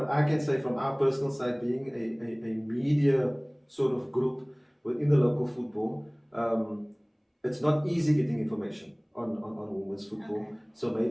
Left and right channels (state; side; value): identical; both; correlation 1.00